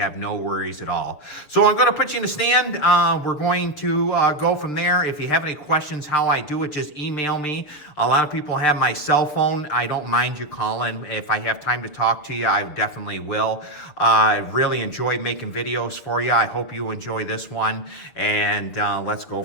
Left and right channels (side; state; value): right; late; 7.1 ms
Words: no worries at all. So I'm going to put you in the stand. We're going to go from there. If you have any questions how I do it, just email me. A lot of people have my cell phone. I don't mind you calling. If I have time to talk to you, I definitely will. I really enjoy making videos for you. I hope you enjoy this one, and let's go